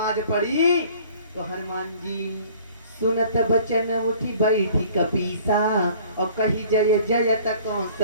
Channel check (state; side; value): inverted; both; correlation -0.52